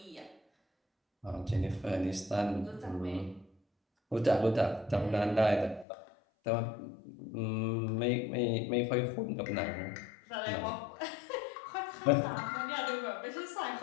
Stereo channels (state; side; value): drops out; right; at 5.9 s